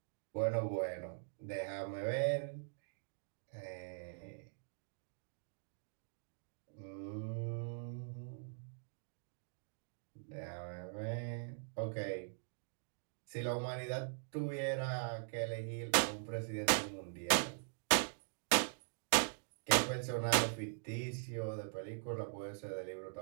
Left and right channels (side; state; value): left; silent; digital silence